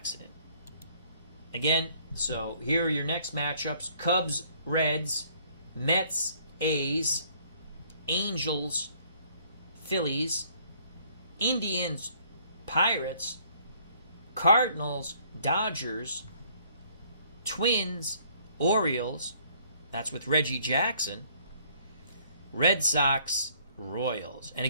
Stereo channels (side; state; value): both; inverted; correlation -0.61